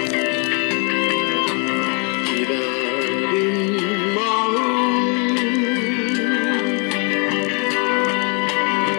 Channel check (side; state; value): right; quieter; 35.7 dB